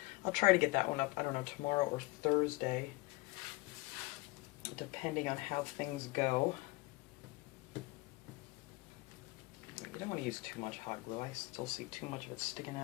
I'll try to get that one up, I don't know, tomorrow or Thursday, depending on how things go. You don't want to use too much hot glue. I still see too much of it sticking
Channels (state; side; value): quieter; right; 23.2 dB